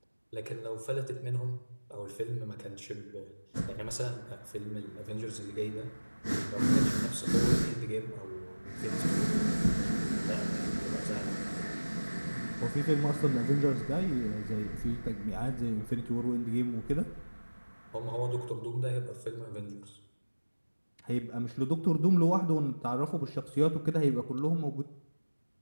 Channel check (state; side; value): inverted; both; correlation -1.00